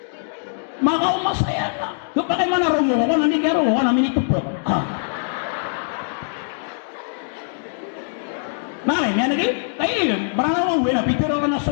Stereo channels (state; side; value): silent; right; digital silence